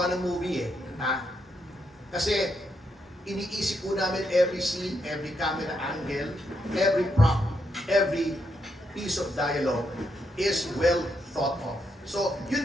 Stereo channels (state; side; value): normal; both; correlation 0.80